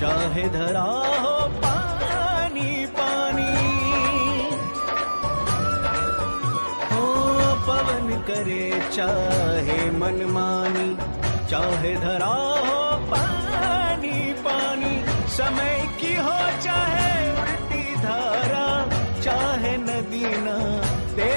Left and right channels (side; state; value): both; inverted; correlation -1.00